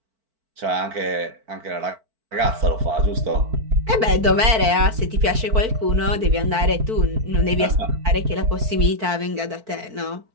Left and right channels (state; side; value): late; left; 4.5 ms